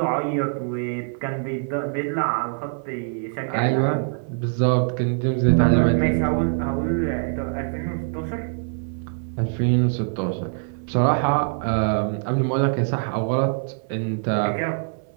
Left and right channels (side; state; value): left; silent; 59 dB below the other